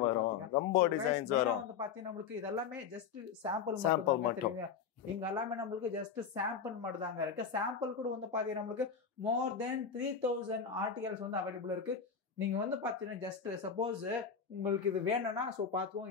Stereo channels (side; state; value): right; quieter; 6.6 dB